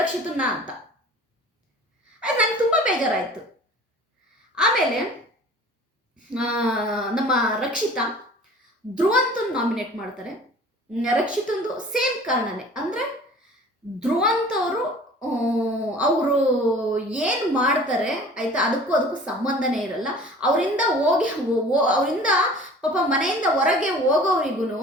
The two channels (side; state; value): both; normal; correlation 0.45